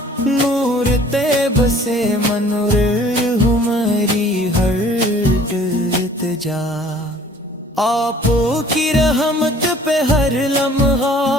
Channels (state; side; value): normal; both; correlation 0.52